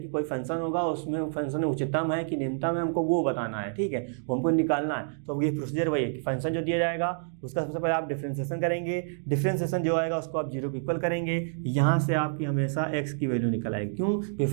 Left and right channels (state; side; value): silent; left; digital silence